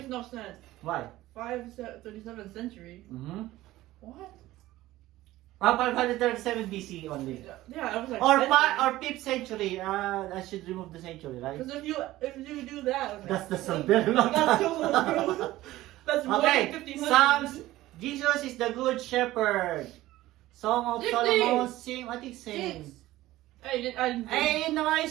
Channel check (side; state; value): left; quieter; 16.4 dB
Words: no sense. Why? 37th century. Mm-hmm. What? 537 BC only. Yeah, I was like. Or century. 5th century. I should remove the century, right? Because if you do that, okay. That's a very long That's time. too That's more Okay, than 1500. Psalms. Jesus is the good shepherd. Song of 60. Solomon, same, I think same. Hey, I didn't. Eh, yun na nga yung